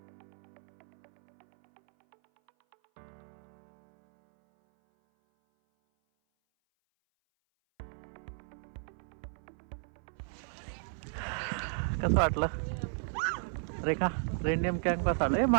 कसं वाटलं रेखा? रेनडियर कॅम्प कसा वाटलं?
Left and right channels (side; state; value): left; silent; 54 dB below the other